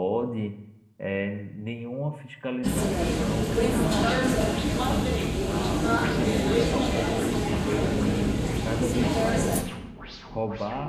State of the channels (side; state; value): both; identical; correlation 1.00